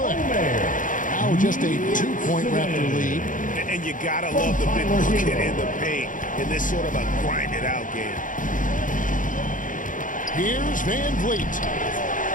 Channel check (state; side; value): late; right; 0.38 ms